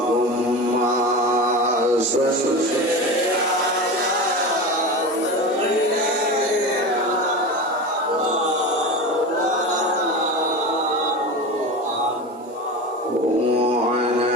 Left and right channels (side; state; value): both; normal; correlation 0.27